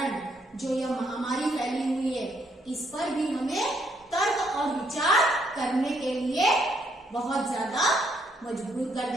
जो यह महामारी फैली हुई है, इस पर भी हमें तर्क और विचार करने के लिए बहुत ज्यादा मजबूर कर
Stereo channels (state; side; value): normal; both; correlation 0.72